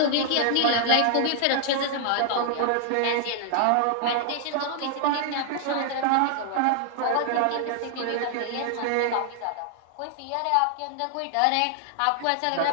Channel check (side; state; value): both; different; correlation 0.00